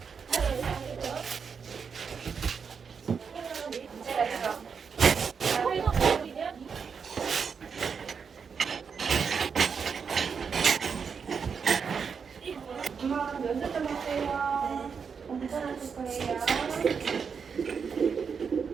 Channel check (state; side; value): quieter; left; 6.1 dB